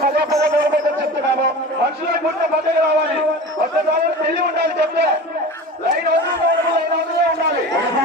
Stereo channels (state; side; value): normal; both; correlation 0.34